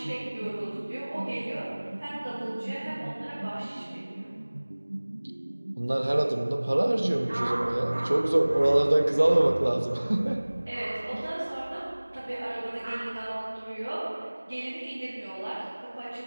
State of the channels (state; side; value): inverted; both; correlation -1.00